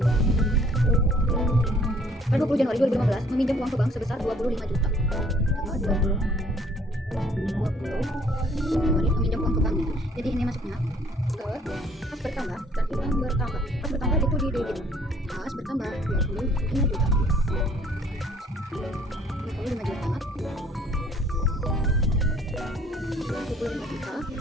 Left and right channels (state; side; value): normal; both; correlation 0.59